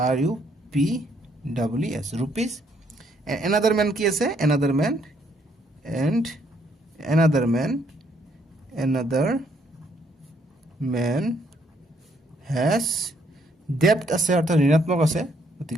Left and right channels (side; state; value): both; normal; correlation 0.70